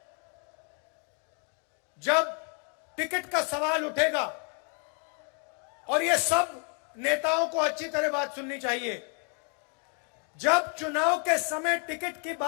जब टिकट का सवाल उठेगा, और ये सब नेताओं को अच्छी तरह बात सुननी चाहिए, जब चुनाव के समय टिकट की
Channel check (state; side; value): quieter; right; 37.3 dB